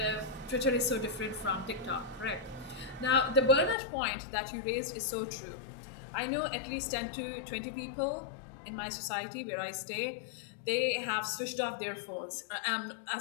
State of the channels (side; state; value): right; drops out; at 3.8 s